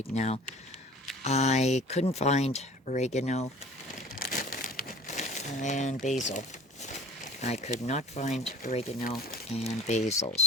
now. I couldn't find oregano and basil. I could not find oregano and basil,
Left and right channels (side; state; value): both; normal; correlation 0.42